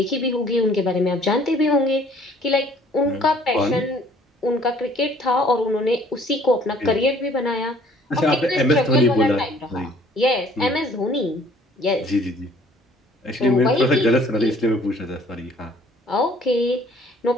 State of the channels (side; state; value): both; normal; correlation 0.57